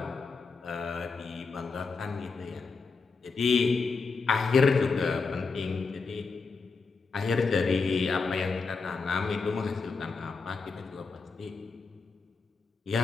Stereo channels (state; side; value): quieter; right; 4.5 dB